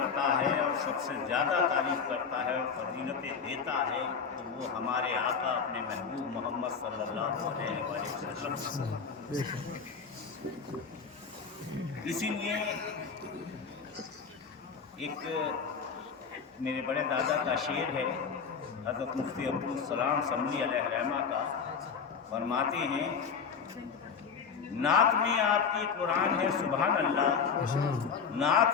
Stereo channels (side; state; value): right; quieter; 6.1 dB